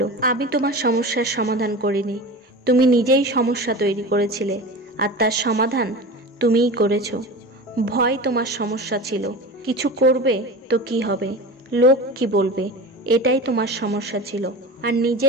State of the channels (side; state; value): both; normal; correlation 0.31